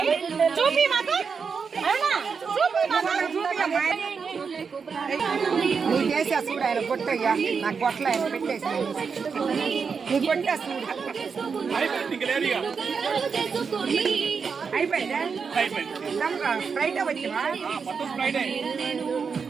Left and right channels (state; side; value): quieter; left; 5.7 dB